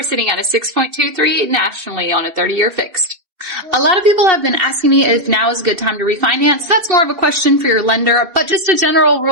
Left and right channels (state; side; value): late; left; 2.7 ms